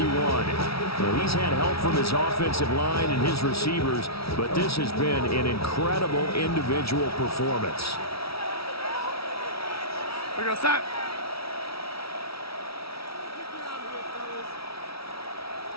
Well, he's had help from his offensive line and his receivers, but this has been an incredible individual performance. We're going to stop.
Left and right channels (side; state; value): right; late; 0.76 ms